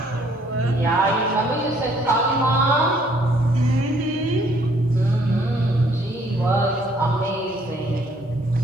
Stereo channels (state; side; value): normal; both; correlation 0.63